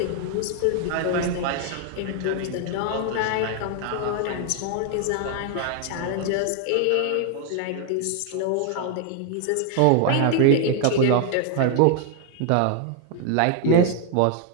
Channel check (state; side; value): different; both; correlation 0.00